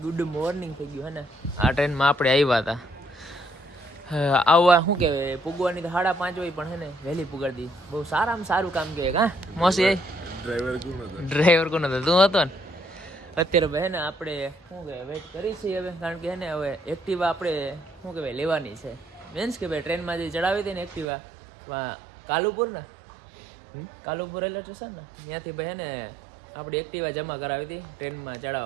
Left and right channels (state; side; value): drops out; left; at 21.1 s